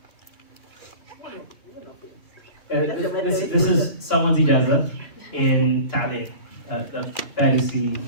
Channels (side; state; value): right; late; 2.9 ms